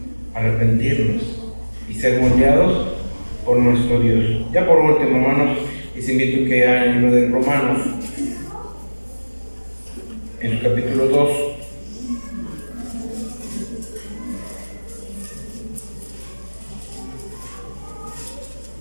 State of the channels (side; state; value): both; inverted; correlation -1.00